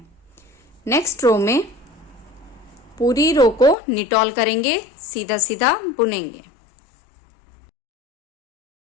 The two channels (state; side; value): drops out; right; at 3.8 s